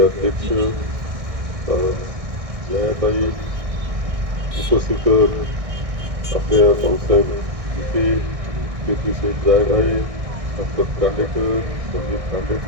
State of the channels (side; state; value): left; late; 1.6 ms